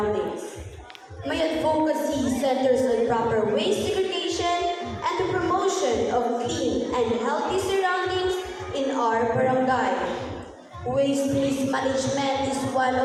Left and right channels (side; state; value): both; identical; correlation 1.00